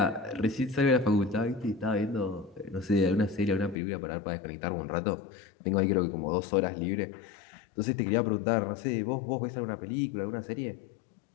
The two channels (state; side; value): drops out; right; at 3.8 s